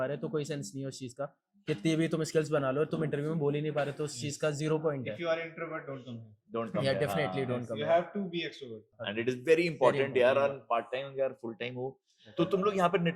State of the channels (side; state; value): both; identical; correlation 1.00